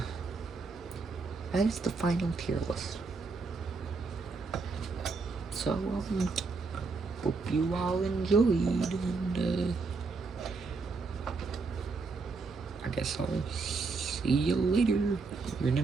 That is the final tier list. So, hope you all enjoyed, and, I guess I'll see you later in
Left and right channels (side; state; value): left; quieter; 4.3 dB